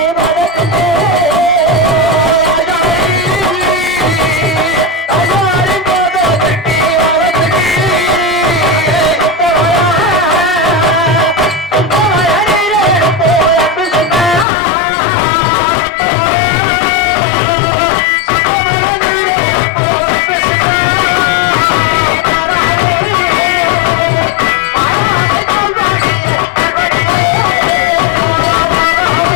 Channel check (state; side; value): drops out; right; at 14.5 s